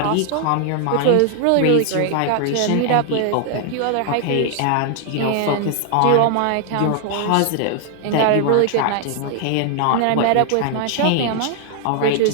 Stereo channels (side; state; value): both; different; correlation 0.00